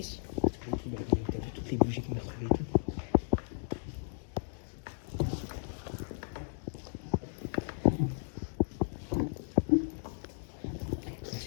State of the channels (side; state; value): right; silent; digital silence